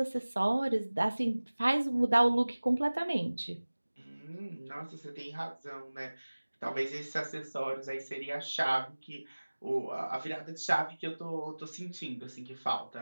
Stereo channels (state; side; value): inverted; both; correlation -1.00